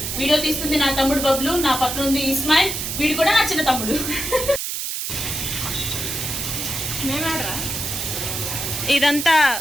వీడియో తీస్తుంది నా తమ్ముడు బబ్లు, నా పక్కన ఉంది ఇస్మాయిల్, వీడు కూడా నా చిన్న తమ్ముడు. ఇదంతా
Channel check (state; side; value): noise; right; hiss, 3 dB below the sound